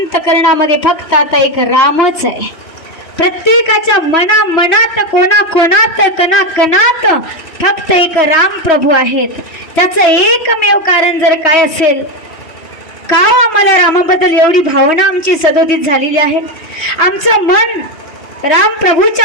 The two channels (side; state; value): right; late; 3.1 ms